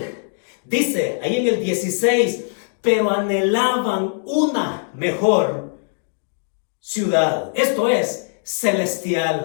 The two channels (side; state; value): right; silent; digital silence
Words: dice ahí en el 16, pero anhelaban una mejor ciudad. Esto es